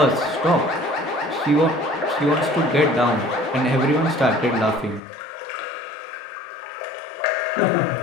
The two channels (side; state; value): right; drops out; at 5.0 s